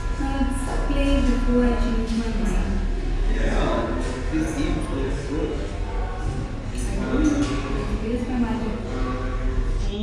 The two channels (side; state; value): both; identical; correlation 1.00